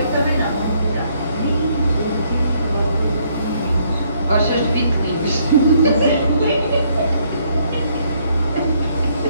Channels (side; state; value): both; inverted; correlation -0.69